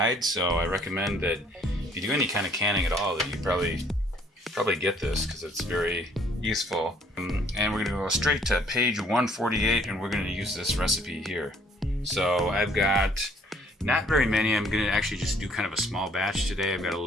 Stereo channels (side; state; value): both; normal; correlation 0.61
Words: So I recommend that if you do any kind of canning at all, that you probably get this because it's very useful. And we're going to go straight to page 148, and we're going to use this recipe here. So I've got not very many. I'm going to actually just do kind of a small batch today. I've got a